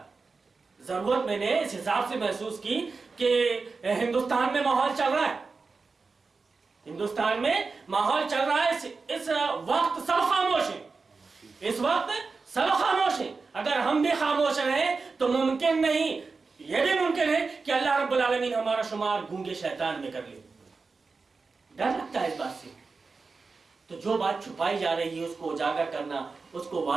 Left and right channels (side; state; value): left; quieter; 4.3 dB